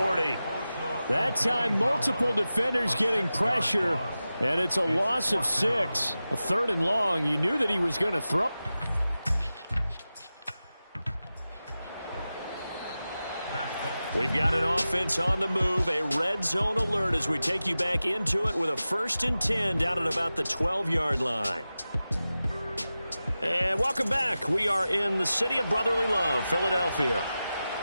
That time, multiple defenders getting pressure, and it's a loss of 6. A 3rd and long. You knew that he was going to throw. We've got an offense on the move, a red zone alert as we take you back into it with a 1st and 10 down at about the 12-yard line. And welcome back. We are in the city of brotherly love, Philadelphia.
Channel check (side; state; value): both; inverted; correlation -0.94